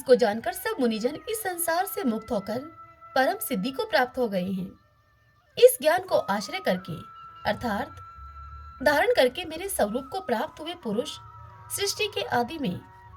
जानकर सब मुनिजन इस संसार से मुक्त होकर परम सिद्धि को प्राप्त हो गए हैं। इस ज्ञान को आश्रय करके अर्थात धारण करके मेरे स्वरूप को प्राप्त हुए पुरुष सृष्टि के आदि में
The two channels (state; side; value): identical; both; correlation 1.00